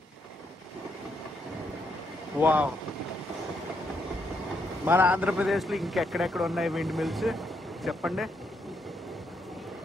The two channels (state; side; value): normal; both; correlation 0.77